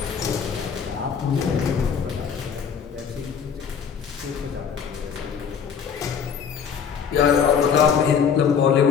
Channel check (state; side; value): quieter; right; 7.1 dB